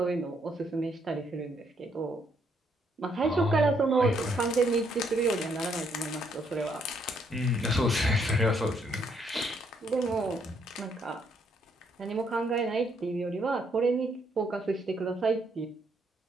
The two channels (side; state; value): both; normal; correlation 0.72